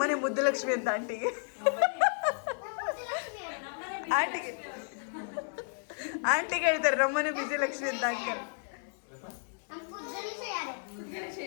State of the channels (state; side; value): silent; right; 56 dB below the other